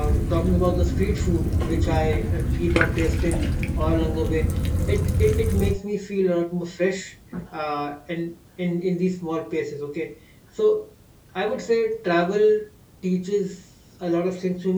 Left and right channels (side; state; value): both; identical; correlation 1.00